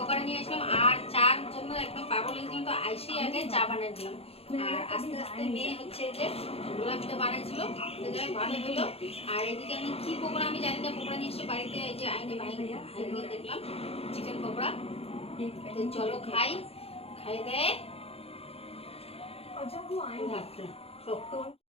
নিয়ে আসলাম আর চার জন্য একদম পাগল লেগেছিলাম। তো আইসেই আগে চা বানিয়ে দিলাম আর আস্তে আস্তে মেয়ে হচ্ছে এই যে গোলাপিটা বানাইছিল, তো যাই ভালো হলো। আর এদিকে আমি কি পকোড়া আমি জানি না, পকোড়া নিয়ে এসে বাড়িতে এই যে আইনে বানিয়ে দেখলাম চিকেন পকোড়া। তো চলো খাই, খাই দেয়।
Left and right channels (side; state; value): right; late; 0.29 ms